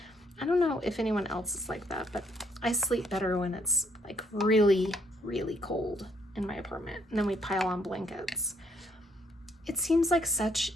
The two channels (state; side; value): normal; both; correlation 0.69